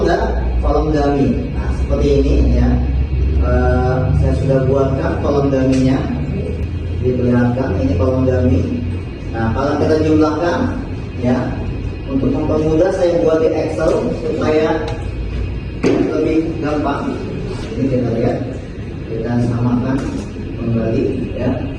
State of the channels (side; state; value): both; identical; correlation 1.00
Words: dummy. Nah, seperti ini, ya. Saya sudah buatkan kolom dummy-nya. Diperlihatkan ini kolom dummy. Nah, kalau kita jumlahkan, ya, untuk mempermudah saya buat di Excel supaya lebih gampang. Ini kita lihat, kita samakan kembali, ya,